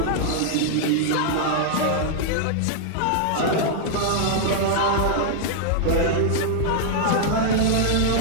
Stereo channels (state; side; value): different; both; correlation -0.01